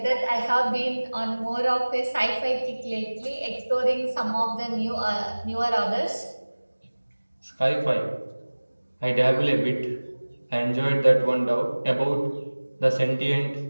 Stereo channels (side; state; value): both; inverted; correlation -1.00